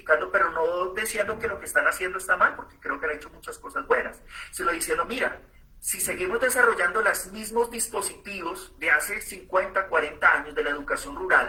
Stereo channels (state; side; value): identical; both; correlation 1.00